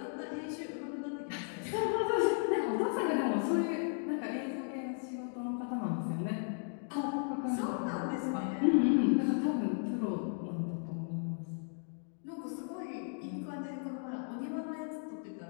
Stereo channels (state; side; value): silent; right; 54 dB below the other